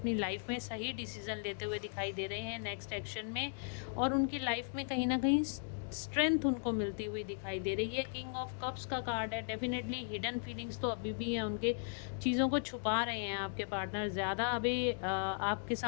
लाइफ में सही डिसीजन लेते हुए दिखाई दे रहे हैं नेक्स्ट एक्शन में, और उनकी लाइफ में कहीं ना कहीं स्ट्रेंथ उनको मिलती हुई दिखाई दे रही है। किंग ऑफ कप्स का कार्ड है। डेफिनेटली हिडन फीलिंग्स तो अभी भी है उनके, चीज़ों को छुपा रहे हैं आपके पार्टनर, ज़्यादा अभी आपके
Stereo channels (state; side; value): silent; right; digital silence